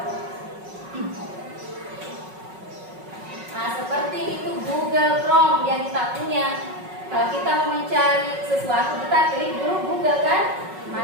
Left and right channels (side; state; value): left; late; 5.4 ms